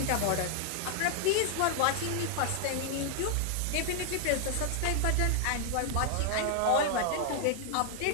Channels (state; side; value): different; both; correlation 0.00